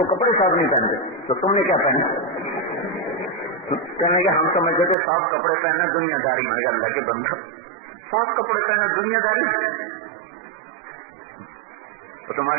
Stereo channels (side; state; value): left; drops out; at 5.0 s